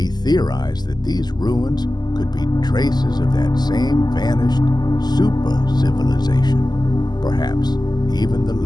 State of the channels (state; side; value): late; right; 0.20 ms